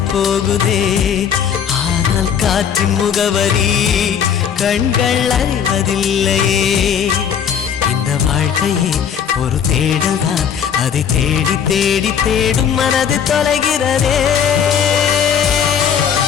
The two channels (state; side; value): quieter; right; 8.0 dB